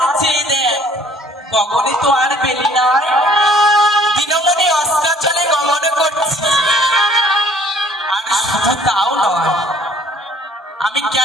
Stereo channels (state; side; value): normal; both; correlation 0.57